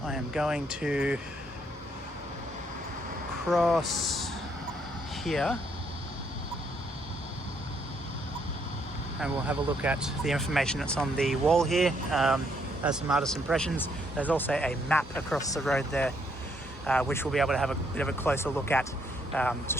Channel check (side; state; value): both; normal; correlation 0.71